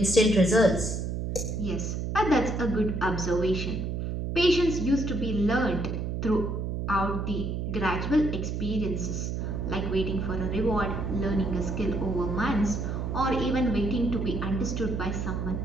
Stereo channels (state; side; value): noise; right; hum, 2 dB below the sound